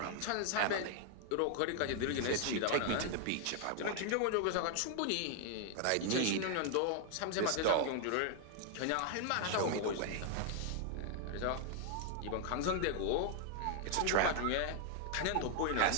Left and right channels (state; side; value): different; both; correlation 0.00